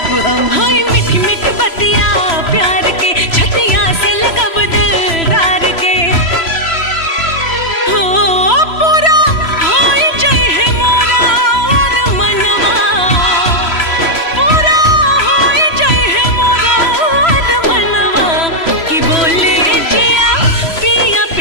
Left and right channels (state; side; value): late; right; 3.0 ms